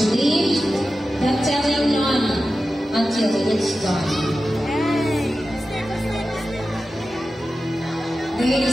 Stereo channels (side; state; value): both; normal; correlation 0.93